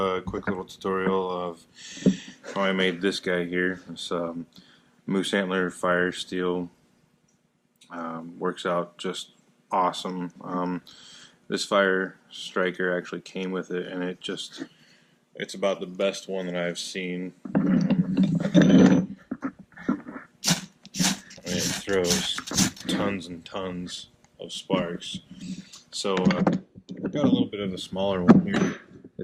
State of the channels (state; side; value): identical; both; correlation 1.00